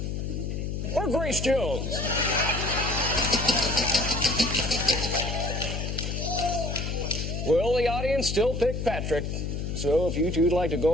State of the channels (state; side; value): noise; left; hum, 3 dB below the sound